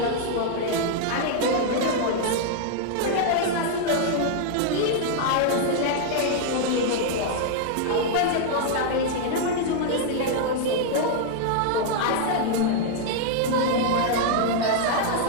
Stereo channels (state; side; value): different; both; correlation 0.00